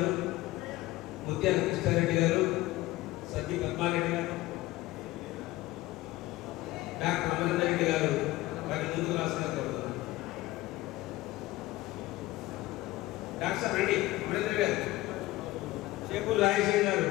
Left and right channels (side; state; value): right; quieter; 17.8 dB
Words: ముత్యాల కృష్ణారెడ్డి గారు, సత్య పద్మారెడ్డి గారు, డాక్టర్ అమరేందర్ రెడ్డి గారు వారి ముందుకు రాసిన కోరుతున్నాను. డాక్టర్ రెడ్డి అమరేందర్ గారు, చేపూరు రాజేశం గారు,